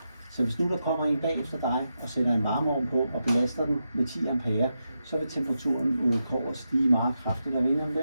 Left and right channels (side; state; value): both; inverted; correlation -0.87